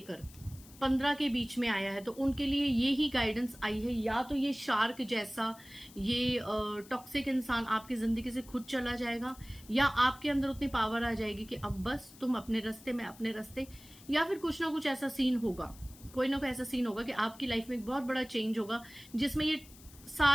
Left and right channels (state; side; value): noise; left; hiss, 21 dB below the sound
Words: 15 के बीच में आया है तो उनके लिए ये ही गाइडेंस आई है, या तो ये शार्क जैसा ये टॉक्सिक इंसान आपकी जिंदगी से खुद चला जाएगा, या आपके अंदर उतनी पावर आ जाएगी कि अब बस तुम अपने रास्ते में अपने रास्ते, या फिर कुछ ना कुछ ऐसा सीन होगा, कोई ना कोई ऐसा सीन होगा कि आपकी लाइफ में एक बहुत बड़ा चेंज होगा जिसमें ये